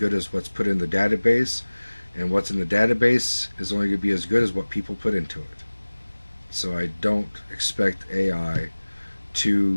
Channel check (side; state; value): both; inverted; correlation -1.00